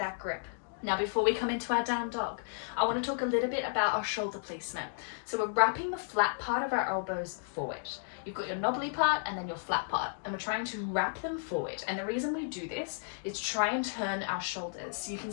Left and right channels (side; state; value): right; silent; digital silence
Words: grip. Now before we come into our down dog, I want to talk a little bit about our shoulder placement. So we're wrapping the flat part of our elbows forward. You've got your knobbly part and then your flat part, and we're trying to wrap them forward. And the reason we do this is try and turn our shoulders. So you can